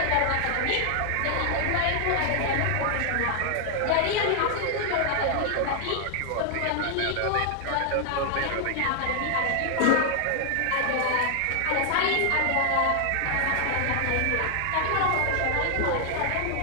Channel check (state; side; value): different; both; correlation 0.00